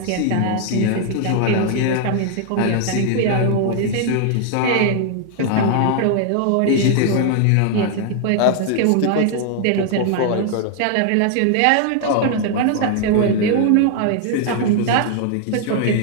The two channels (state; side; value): different; both; correlation 0.00